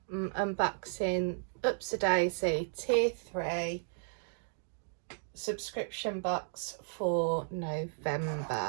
I'm unboxing Upsy Daisy Tier 3 subscription box for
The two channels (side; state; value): left; silent; digital silence